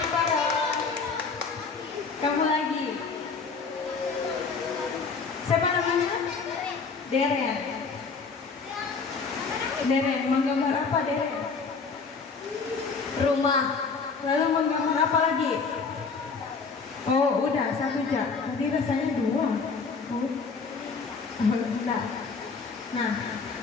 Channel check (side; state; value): right; quieter; 4.9 dB